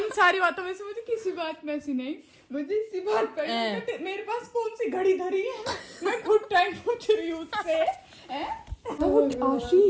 सारी बातों में से मुझे किसी बात में ऐसी नहीं, मुझे इसी बात पर मेरे पास कौन सी घड़ी धरी है, मैं खुद टाइम पूछ रही हूँ उससे। तो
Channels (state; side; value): identical; both; correlation 1.00